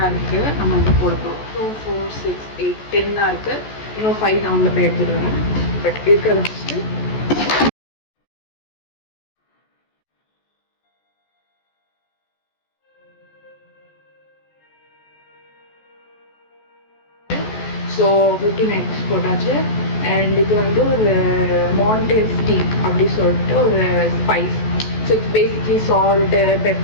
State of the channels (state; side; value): late; right; 14 ms